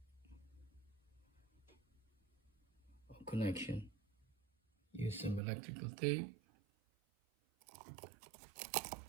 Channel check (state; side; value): drops out; left; at 5.4 s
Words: of connection. Use some electrical tape.